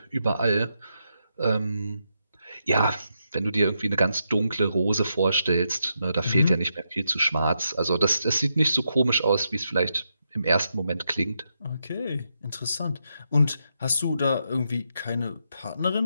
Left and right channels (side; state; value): both; inverted; correlation -0.82